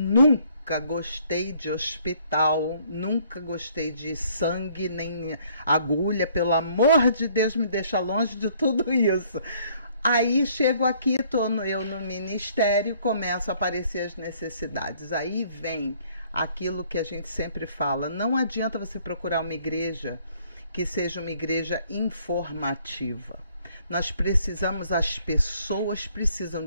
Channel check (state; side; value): inverted; both; correlation -0.62